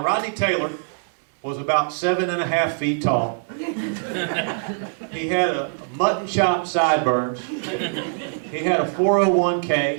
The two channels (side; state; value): left; silent; digital silence